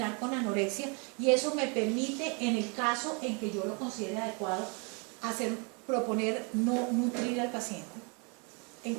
con anorexia, y eso me permite, en el caso en que yo lo considere adecuado, proponer no nutrir al paciente en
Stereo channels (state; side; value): quieter; left; 34.2 dB